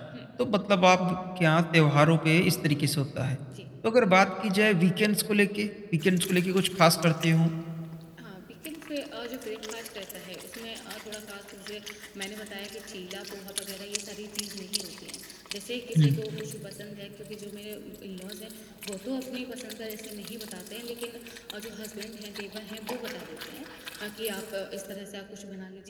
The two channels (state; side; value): identical; both; correlation 1.00